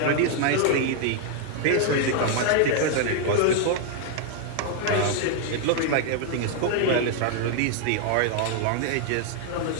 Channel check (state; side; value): different; both; correlation 0.00